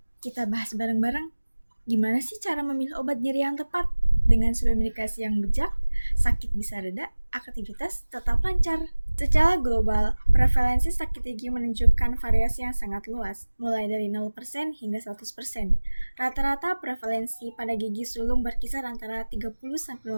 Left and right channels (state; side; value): inverted; both; correlation -1.00